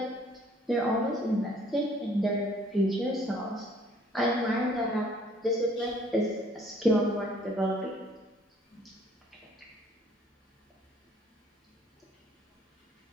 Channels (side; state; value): both; normal; correlation 0.58